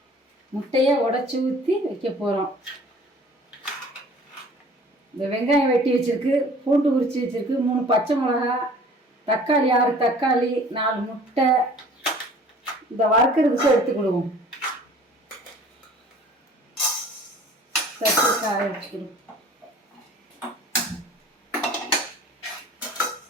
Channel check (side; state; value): both; normal; correlation 0.49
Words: முட்டையை உடச்சி ஊற்றி வைக்க போகிறோம். இந்த வெங்காயம் வெட்டி வச்சுருக்கு, பூண்டு உரித்து வச்சுருக்கு, 3 பச்சை மிளகா, தக்காளி 6 தக்காளி, 4 முட்டை. இந்த வறுக்கிறதுக்கு எடுத்துக்கிடுவோம். தட்டி காய வச்சுக்கிடுவோம்.